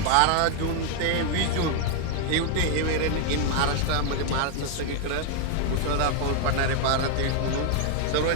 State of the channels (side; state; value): both; different; correlation 0.00